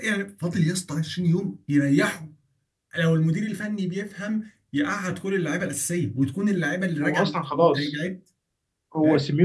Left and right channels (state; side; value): identical; both; correlation 1.00